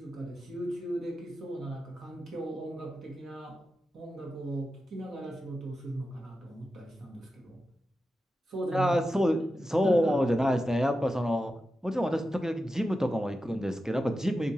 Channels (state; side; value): normal; both; correlation 0.91